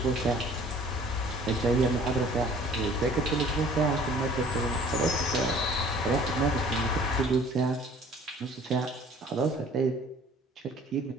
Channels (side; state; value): both; normal; correlation 0.52